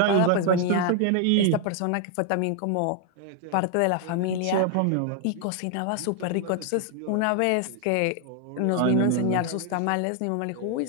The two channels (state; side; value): different; both; correlation 0.00